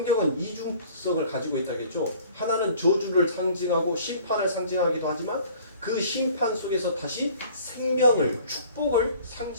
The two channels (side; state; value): both; inverted; correlation -0.51